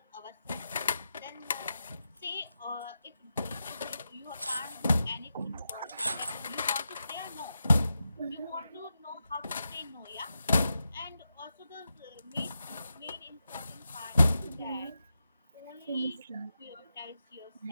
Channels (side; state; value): both; inverted; correlation -0.89